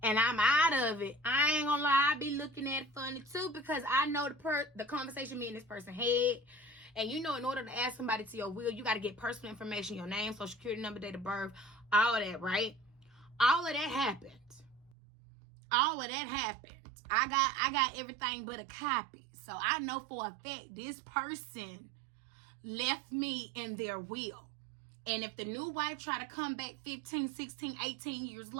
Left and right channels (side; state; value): left; drops out; at 15.0 s